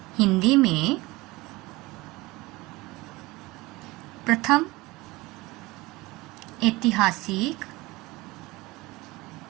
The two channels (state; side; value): quieter; left; 21.3 dB